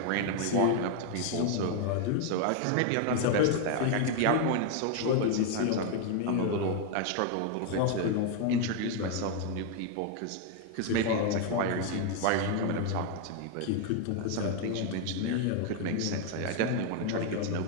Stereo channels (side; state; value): both; different; correlation 0.00